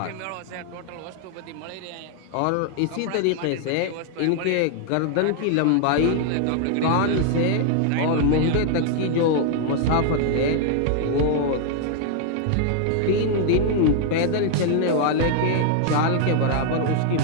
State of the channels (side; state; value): both; different; correlation 0.00